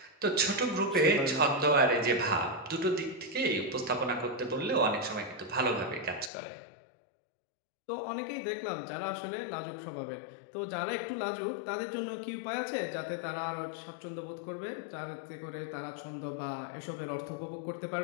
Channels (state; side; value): drops out; right; at 6.3 s